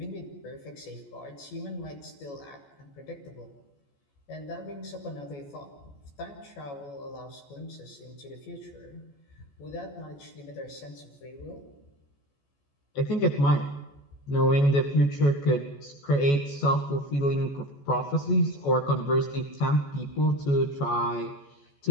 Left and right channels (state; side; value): late; right; 14 ms